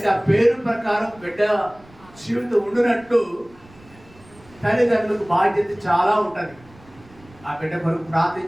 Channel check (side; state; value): right; noise; rumble, 25 dB below the sound